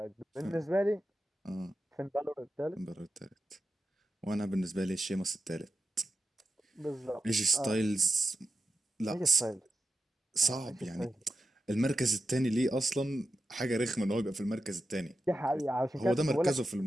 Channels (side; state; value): both; normal; correlation 0.90